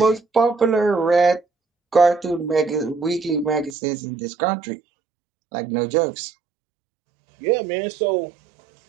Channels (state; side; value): drops out; left; at 3.8 s